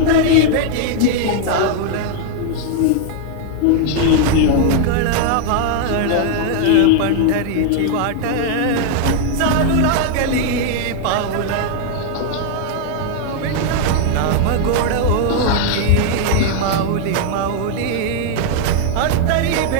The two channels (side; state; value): both; different; correlation 0.00